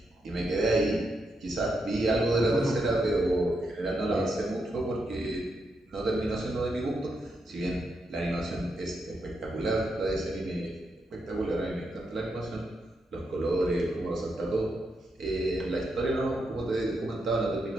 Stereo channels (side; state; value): both; normal; correlation 0.82